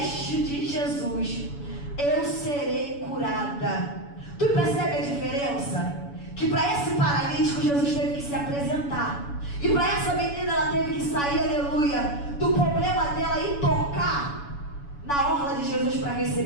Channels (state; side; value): late; right; 7.0 ms